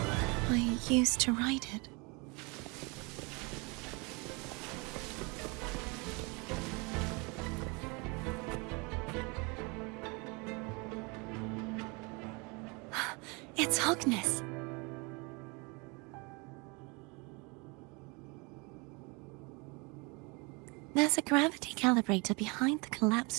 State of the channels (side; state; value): left; quieter; 29.0 dB